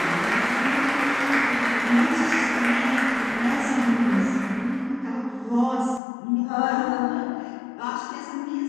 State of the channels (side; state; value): right; drops out; at 6.0 s